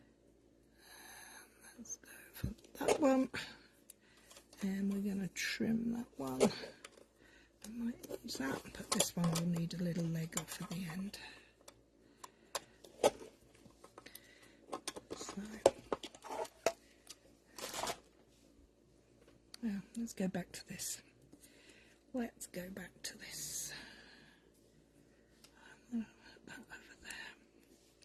Let's go for that one. And we're going to trim that one. I might use that, but this one will need a little leg off at the end. So, now let's go back to this. Let's go back to this. I'm going to put that over there.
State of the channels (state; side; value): identical; both; correlation 1.00